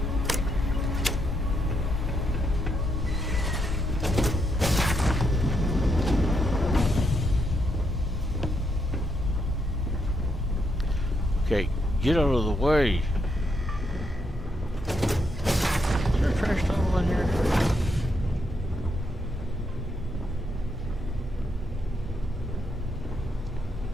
Okay, get out of the way. Is there a trash tunnel in here?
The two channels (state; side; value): normal; both; correlation 0.79